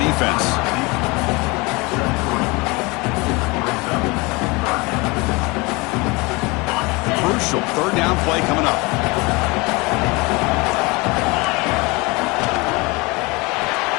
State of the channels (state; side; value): quieter; right; 25.5 dB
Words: defense. Crucial 3rd down play coming up.